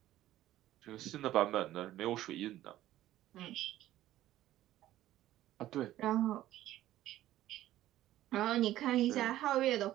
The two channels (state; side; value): quieter; left; 14.1 dB